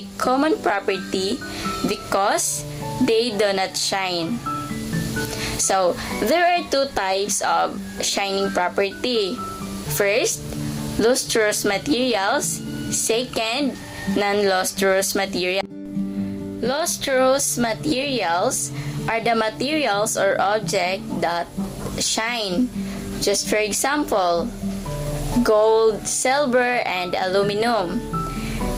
common property because they do not shine. So, there are two types of shining property. First, lustrous materials. Second, non-lustrous materials. Lustrous materials are the materials or objects that shine. Just for example, gold, silver, and aluminum.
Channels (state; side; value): identical; both; correlation 1.00